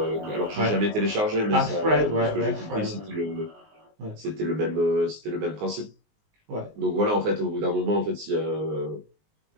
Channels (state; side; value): late; left; 19 ms